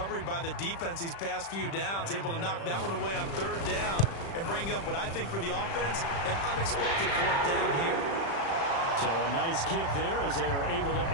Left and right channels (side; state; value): right; late; 36 ms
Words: by the defense these past few downs, able to knock that one away on 3rd down and bring up what I think for the offense, an unexpected 4th down here. So a nice kick there as they are able to